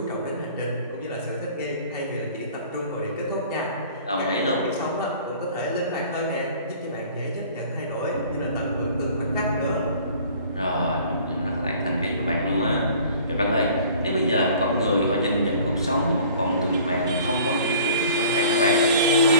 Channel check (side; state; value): both; inverted; correlation -0.49